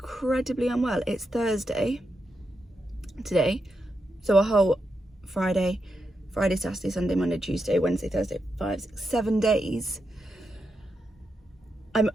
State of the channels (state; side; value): normal; both; correlation 0.86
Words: unwell. It's Thursday today, so a whole Friday, Saturday, Sunday, Monday, Tuesday, Wednesday, Thursday, 5, 6, 7 days. I'm